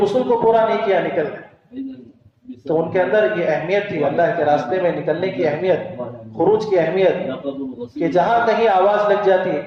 غسل کو پورا نہیں کیا، نکل گئے۔ تو ان کے اندر یہ اہمیت تھی، اللہ کے راستے میں نکلنے کی اہمیت، خروج کی اہمیت، کہ جہاں کہیں آواز لگ جاتی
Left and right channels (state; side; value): identical; both; correlation 1.00